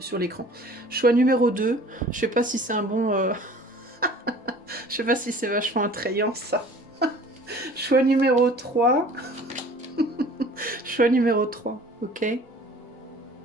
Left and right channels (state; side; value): normal; both; correlation 0.48